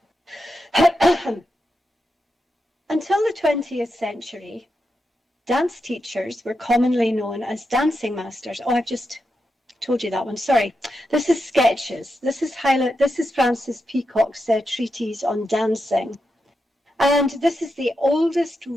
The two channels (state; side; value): normal; both; correlation 0.87